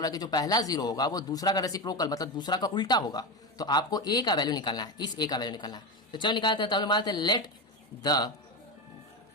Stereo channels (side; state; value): both; normal; correlation 0.17